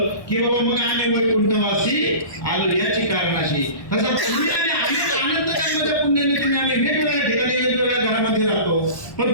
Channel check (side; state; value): right; late; 1.2 ms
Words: की बाबा मग आम्ही वैकुंठवासी आलो याची कारणाशी. तसं तुम्ही आणि आनंद जन्माच्या पुण्याने तुम्ही आम्ही वेगवेगळ्या ठिकाणी वेगवेगळ्या घरामध्ये राहतो, पण